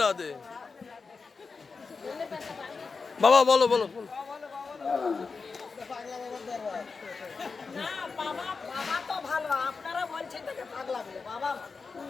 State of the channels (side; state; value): right; quieter; 4.7 dB